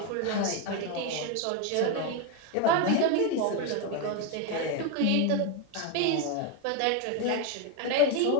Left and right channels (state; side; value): different; both; correlation 0.02